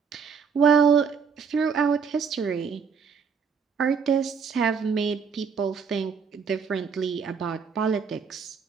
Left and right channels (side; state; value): left; quieter; 6.1 dB